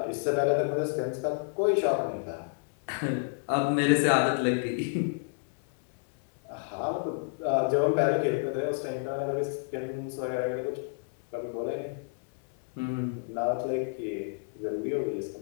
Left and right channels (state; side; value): silent; right; digital silence